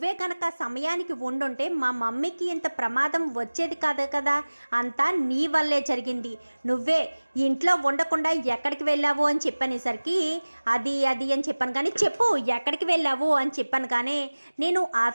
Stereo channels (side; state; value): both; inverted; correlation -1.00